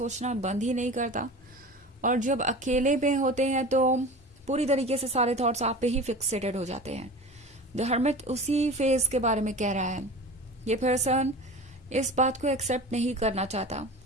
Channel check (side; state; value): both; normal; correlation 0.34